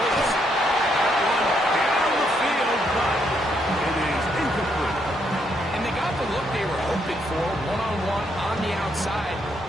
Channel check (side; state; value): both; normal; correlation 0.75